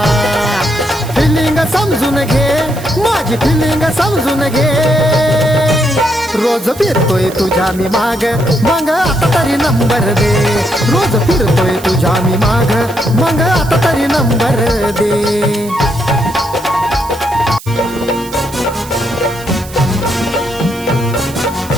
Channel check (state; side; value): noise; right; hiss, 17 dB below the sound